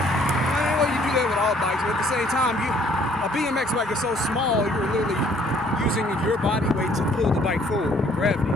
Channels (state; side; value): normal; both; correlation 0.61